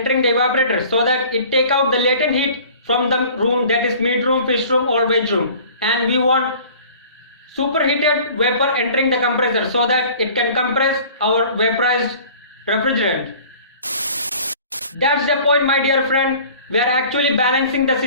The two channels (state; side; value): inverted; both; correlation -0.47